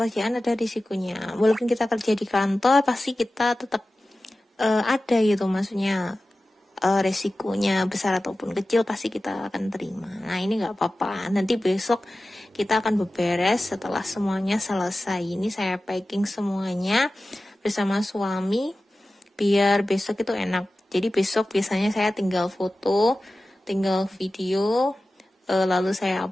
ada risikonya. Walaupun kita kerja di kantor pasti kita tetap ada gitu, maksudnya resikonya besar ataupun kecil pasti kita akan terima. Nah ini nggak apa-apa, nanti besok kita akan beberes setelah semuanya selesai. Ini saya packing semuanya bersama suami biar besok itu enak. Jadi besok biasanya saya tinggal foto, tinggal video, lalu saya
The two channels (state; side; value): normal; both; correlation 0.95